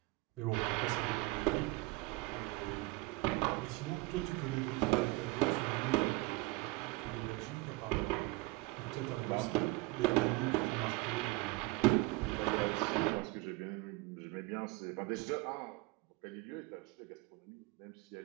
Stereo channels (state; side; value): quieter; left; 23.5 dB